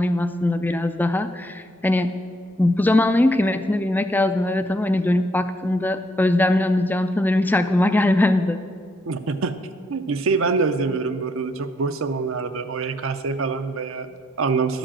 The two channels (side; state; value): both; normal; correlation 0.72